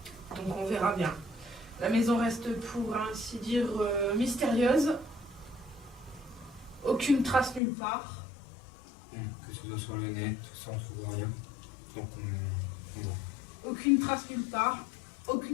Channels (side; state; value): right; drops out; at 7.6 s